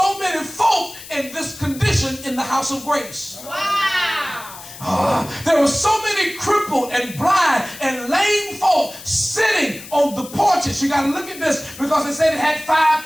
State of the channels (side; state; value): left; noise; hiss, 15 dB below the sound